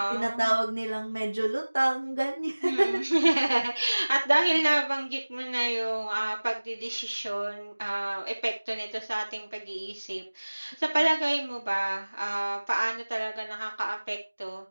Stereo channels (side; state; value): both; inverted; correlation -1.00